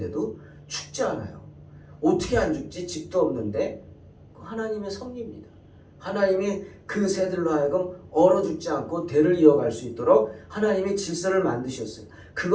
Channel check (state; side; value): identical; both; correlation 1.00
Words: 죽지 않아요. 어떻게 안 죽지? 집도 없는데 하나님의 섭리입니다. 하나님이 그 새들로 하여금 얼어 죽지 않고 대를 이어갈 수 있도록 하나님이 질서를 만드셨어요.